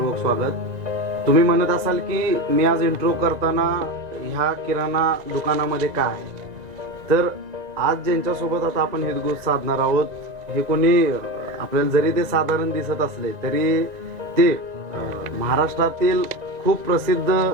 स्वागत. तुम्ही म्हणत असाल की मी आज इंट्रो करताना ह्या किराणा दुकानामध्ये काय आहे, तर आज ज्यांच्यासोबत आता आपण हितगुज साधणार आहोत, हे कोणी आपल्याला जरी ते साधारण दिसत असले तरी ते महाराष्ट्रातील खूप प्रसिद्ध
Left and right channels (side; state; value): left; late; 1.9 ms